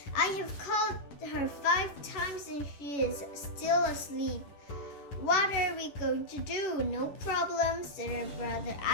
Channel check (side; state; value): right; late; 11 ms